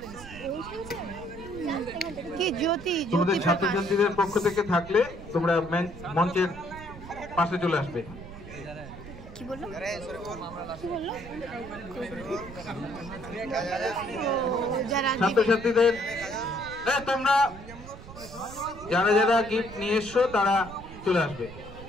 কি জ্যোতি তোমাদের ছাত্রছাত্রীদের পক্ষ থেকে থাকলে তোমরা মঞ্চের পাশে চলে আসবে। কি বললো? ছাত্রছাত্রীদের তোমরা যারা যারা গিফট নিয়ে এসছো তারা চলে আসবে,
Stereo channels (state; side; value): noise; right; rumble, 15 dB below the sound